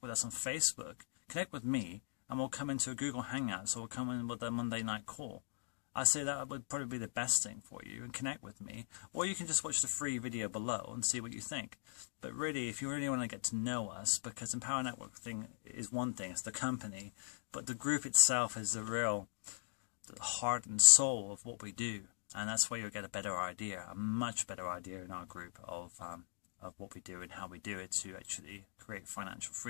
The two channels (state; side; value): silent; right; digital silence